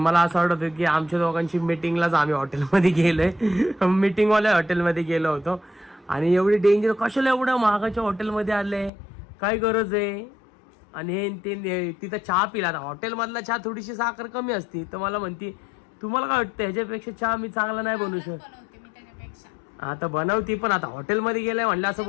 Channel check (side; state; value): right; drops out; at 8.9 s